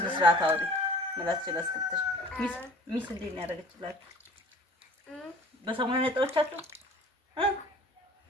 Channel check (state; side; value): normal; both; correlation 0.48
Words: አውሪ ማለት ስለስክተሽ ሚስ እንዴት ነው ያደረገችላችሁ በሰሞኑ ነጣዎቻችሁ